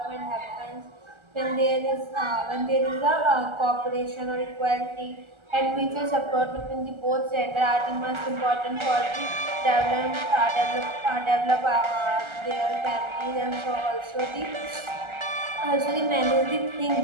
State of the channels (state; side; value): late; left; 1.3 ms